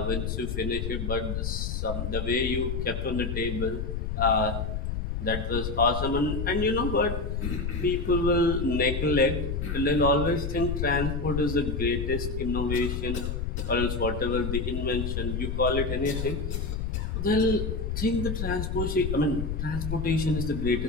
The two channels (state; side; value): noise; left; rumble, 2 dB below the sound